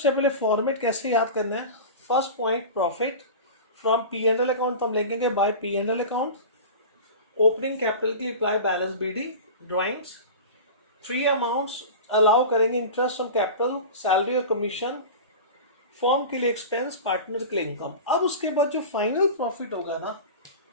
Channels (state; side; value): inverted; both; correlation -0.31